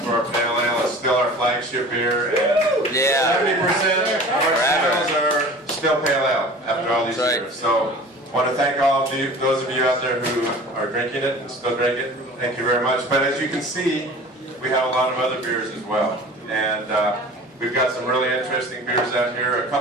for our pale ale. It's still our flagship beer. And 70% of our sales are still pale ale after all these years. So I want to thank all of you, those of you out there who are drinking it and still drink it. Thank you very much. But as you can see, we have a lot of other beers as well. And we've got some really interesting beers out here. A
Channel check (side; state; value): both; normal; correlation 0.41